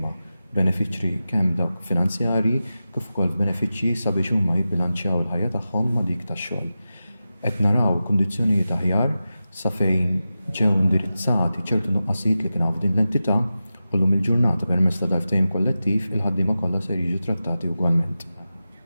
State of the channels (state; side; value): inverted; both; correlation -0.93